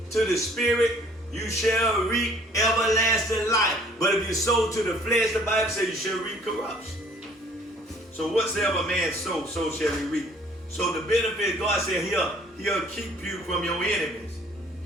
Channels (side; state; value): both; normal; correlation 0.57